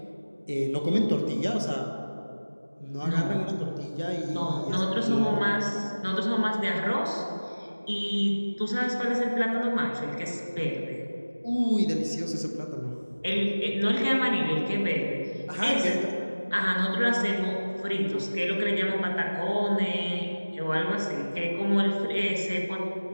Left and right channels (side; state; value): both; inverted; correlation -1.00